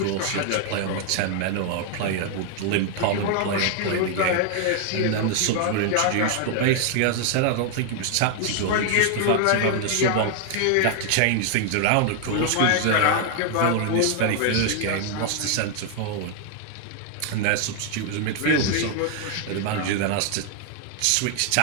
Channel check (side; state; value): both; different; correlation 0.00